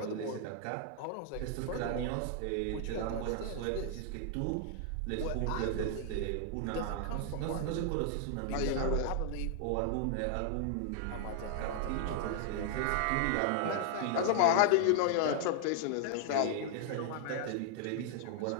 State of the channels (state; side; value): different; both; correlation 0.00